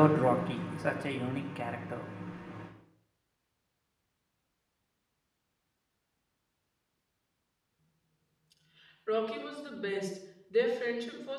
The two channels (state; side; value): identical; both; correlation 1.00